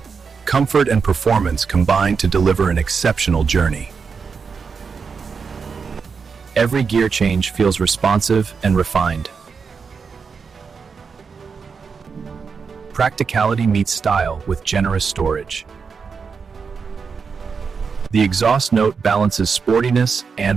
Comfort and performance combine to deliver an exceptional journey. Every gear change feels responsive and refined. Practicality meets style with generous storage. The exhaust note balances sportiness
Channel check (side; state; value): left; quieter; 5.5 dB